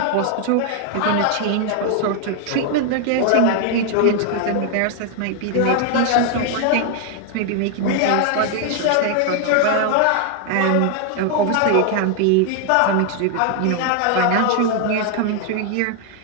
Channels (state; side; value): different; both; correlation 0.00